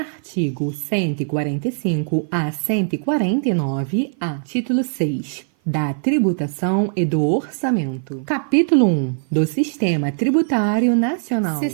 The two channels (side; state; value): left; silent; 56 dB below the other